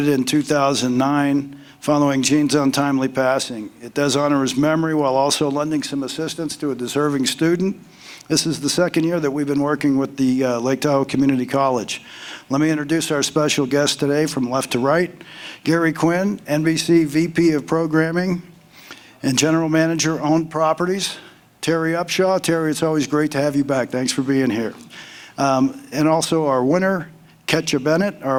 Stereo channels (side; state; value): both; identical; correlation 1.00